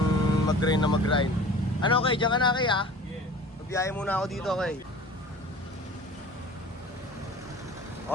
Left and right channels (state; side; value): normal; both; correlation 0.42